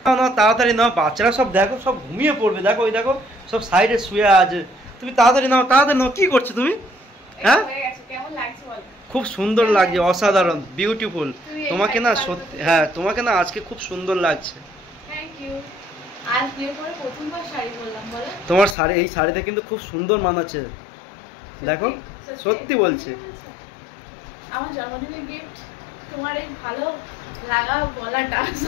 না না, তাড়াতাড়ি নাও, বাচ্চারা সব দেখো সব ঘুমিয়ে পড়বে। দেখো ওই দেখো সব সাইডে শুয়ে আছে। তুমি তাড়াতাড়ি নাও, তাড়াতাড়ি নাও। কি করছো তুমি? হ্যাঁ, কেমন লাগছে বল? খুব সুন্দর লাগছে, অসাধারণ, বিউটিফুল। তোমাকে না সত্যি, হ্যাঁ তোমাকে না আজকে খুব সুন্দর লাগছে। Thank you. আজ বিয়ে করে প্রথমবার শাড়ি পরলাম, বলো। তোমার শাড়ি, এই শাড়িটা কিন্তু খুব সুন্দর মানাচ্ছে, দেখো সত্যি বলছি। আমার জন্মদিনের গিফট তোমার এই ভালো লাগা গলাটা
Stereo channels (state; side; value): drops out; right; at 18.8 s